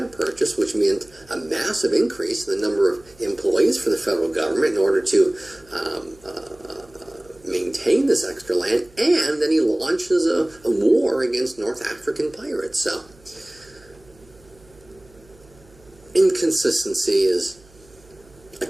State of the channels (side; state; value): right; noise; hum, 27 dB below the sound